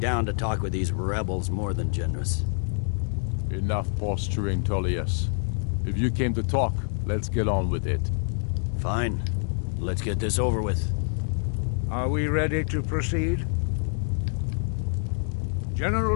to talk with these rebels more than generous. Enough posturing, Tullius. If you came to talk, let's get on with it. Fine. Let's get this over with. Are we ready to proceed?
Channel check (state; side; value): silent; right; 61 dB below the other